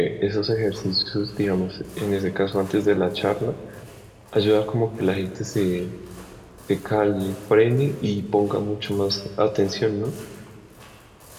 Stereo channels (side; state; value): both; identical; correlation 1.00